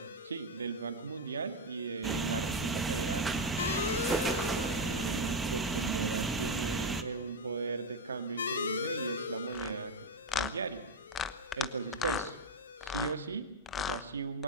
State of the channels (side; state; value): both; normal; correlation 0.07